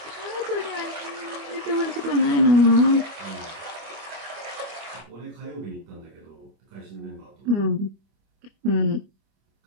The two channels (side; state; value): left; late; 25 ms